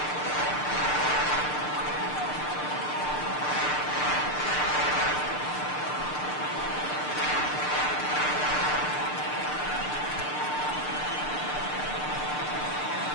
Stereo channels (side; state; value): right; late; 6.7 ms